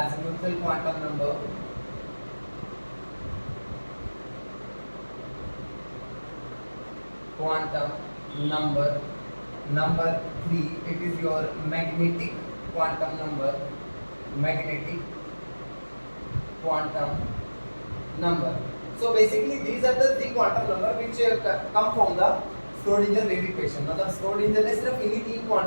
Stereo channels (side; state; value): both; inverted; correlation -1.00